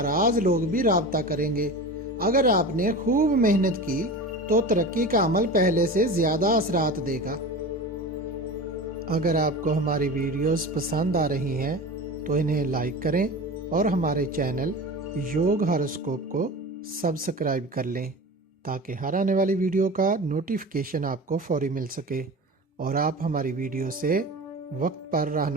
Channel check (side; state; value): both; normal; correlation 0.31